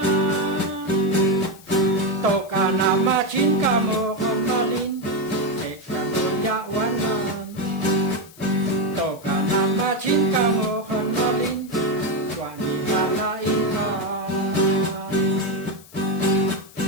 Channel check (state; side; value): noise; left; hiss, 22 dB below the sound